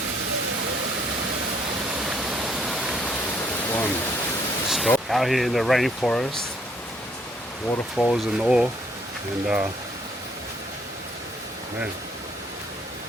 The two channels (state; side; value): normal; both; correlation 0.66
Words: One. Stop. Out here in the rainforest. Waterfalls and all. And man,